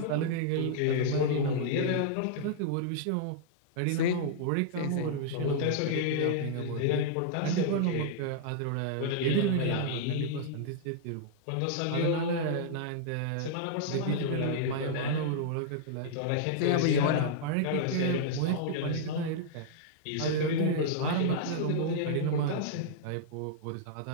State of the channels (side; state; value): both; different; correlation -0.02